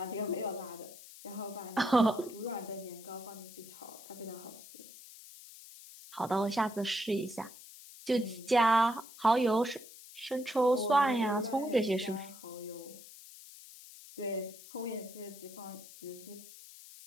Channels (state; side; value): noise; left; hiss, 17 dB below the sound